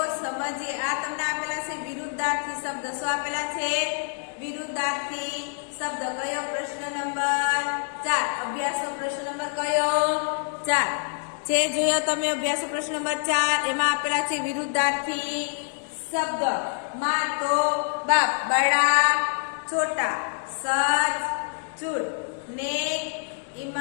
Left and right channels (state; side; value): silent; right; 61 dB below the other